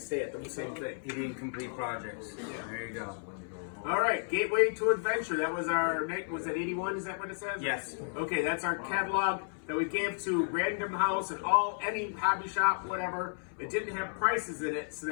at the same thing. He didn't complete projects. Yeah. There you go. All right, Gateway to Adventure. That was was that 81? Is that what it says? Yes. Okay, that's our catalog that we gave to Random House and any hobby shop, whatever. It didn't have prices in it, so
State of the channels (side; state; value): right; silent; 56 dB below the other